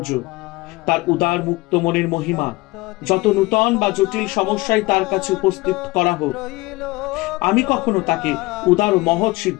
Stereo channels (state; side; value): quieter; right; 21.5 dB